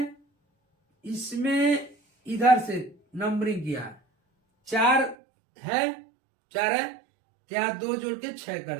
इसमें इधर से नंबरिंग किया, 4 है, 4 है, यहाँ 2 जोड़ के 6 कर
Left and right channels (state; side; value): drops out; left; at 5.2 s